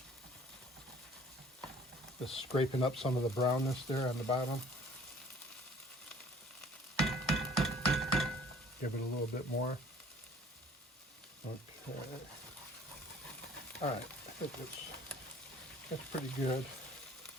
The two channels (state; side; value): normal; both; correlation 0.53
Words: Just scraping up some of the brownness there on the bottom. Give it a little bit more. Okay. All right, I think that's pretty good.